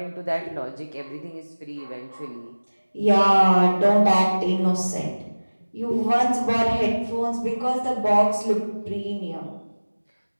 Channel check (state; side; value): inverted; both; correlation -1.00